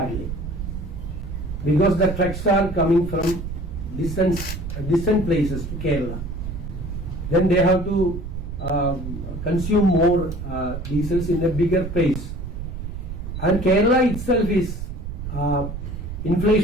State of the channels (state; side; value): noise; right; rumble, 7 dB below the sound